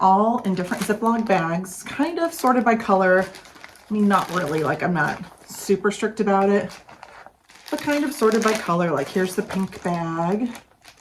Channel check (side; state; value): both; identical; correlation 1.00